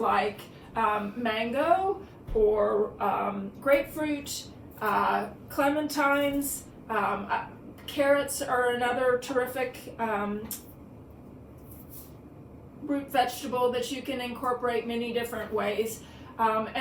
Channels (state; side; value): identical; both; correlation 1.00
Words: mango or grapefruit, clementines, carrots are another terrific root vegetable that you can incorporate many different ways.